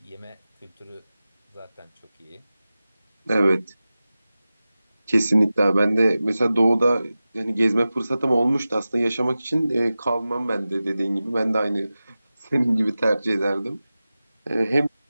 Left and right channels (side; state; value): both; inverted; correlation -0.95